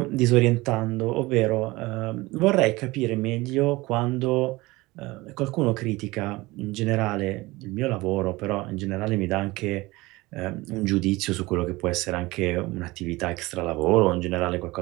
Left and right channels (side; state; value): left; quieter; 21.1 dB